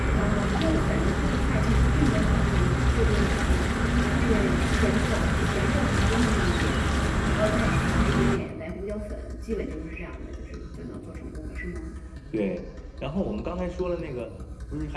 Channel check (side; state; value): both; identical; correlation 1.00